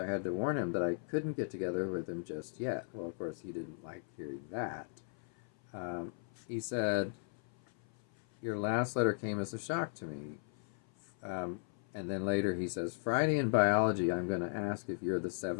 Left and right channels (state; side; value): silent; right; 53 dB below the other